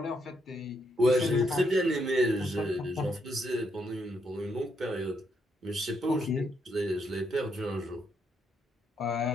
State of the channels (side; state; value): both; normal; correlation 0.77